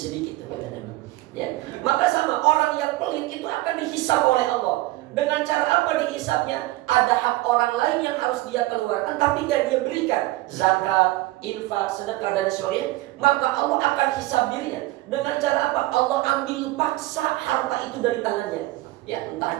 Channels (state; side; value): quieter; left; 18.7 dB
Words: kata Nabi. Ya maka sama orang yang pelit itu akan dihisab oleh Allah. Dengan cara apa dihisabnya? Ada hak orang lain yang harus dia keluarkan tapi gak dia berikan, zakat, infak, sedekah dan sebagainya. Maka Allah akan hisab dirinya. Dengan cara apa? Allah ambil paksa harta itu dari tangannya. Ya entah